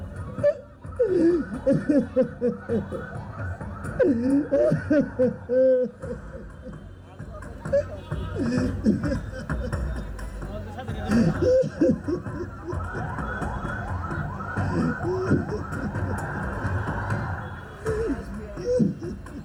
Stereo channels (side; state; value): both; identical; correlation 1.00